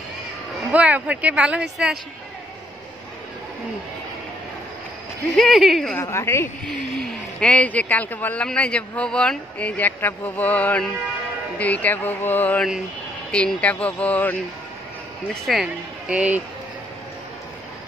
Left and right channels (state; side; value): normal; both; correlation 0.69